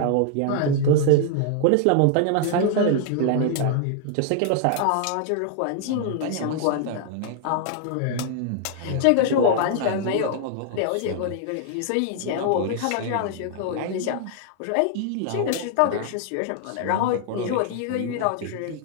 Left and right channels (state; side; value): different; both; correlation 0.00